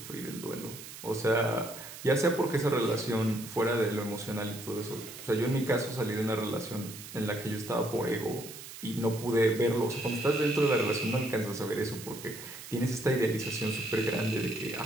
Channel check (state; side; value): noise; right; hiss, 13 dB below the sound